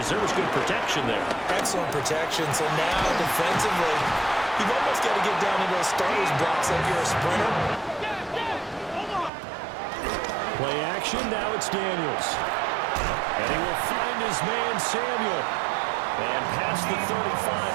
There was good protection there. Excellent protection. So now defensively, you've almost got to get down into those starters blocks like you're a sprinter. Play action. Now it's Daniels. And he will find his man Samuel. And past the 35,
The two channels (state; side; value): drops out; left; at 9.3 s